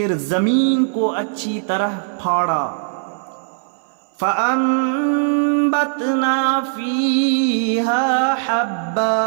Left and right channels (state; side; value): silent; left; 64 dB below the other